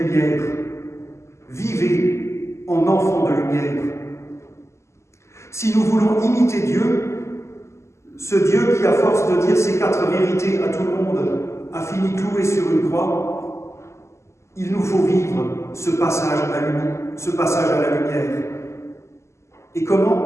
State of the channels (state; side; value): late; right; 0.13 ms